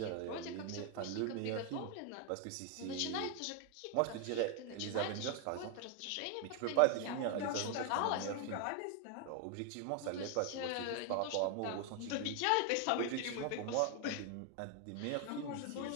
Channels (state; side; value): different; both; correlation 0.01